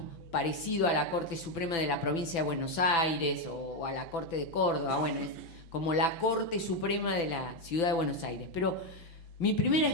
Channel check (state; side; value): late; right; 6.0 ms